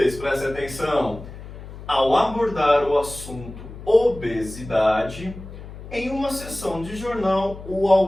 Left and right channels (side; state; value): left; noise; hum, 14 dB below the sound